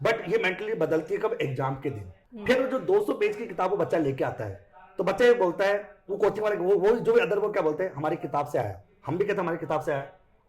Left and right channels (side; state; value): both; identical; correlation 1.00